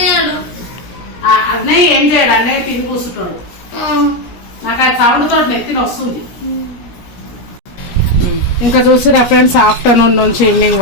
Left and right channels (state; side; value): late; right; 17 ms